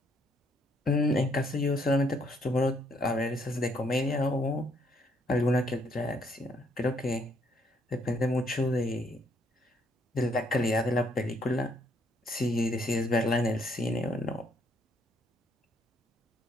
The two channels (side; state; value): both; normal; correlation 0.69